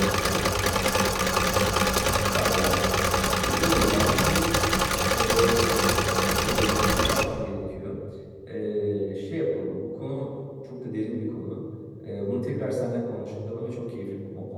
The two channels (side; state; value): both; identical; correlation 1.00